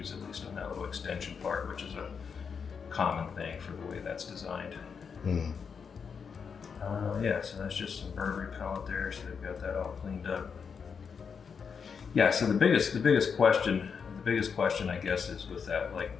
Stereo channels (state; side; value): quieter; right; 6.2 dB